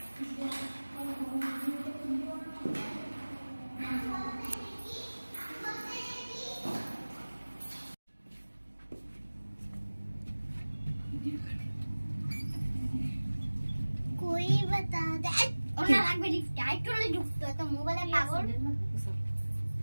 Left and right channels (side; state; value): both; inverted; correlation -1.00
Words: कोई बता दे ওনা লাগবে লিফট আইটলে ঢুকতো তো মোবাইলে পাগল